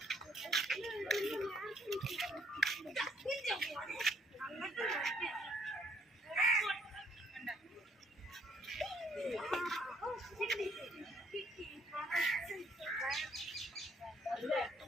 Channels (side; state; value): both; normal; correlation 0.66